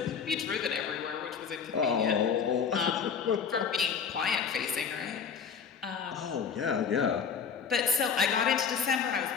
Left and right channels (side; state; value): right; quieter; 6.4 dB